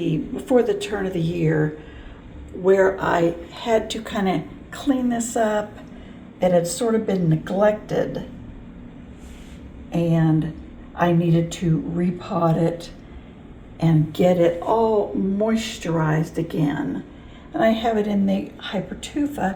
before the turn of the year, where I had to kind of clean this up. It had sort of been neglected and I needed to repot it and get it all moisturized again. And I have it in the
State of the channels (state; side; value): identical; both; correlation 1.00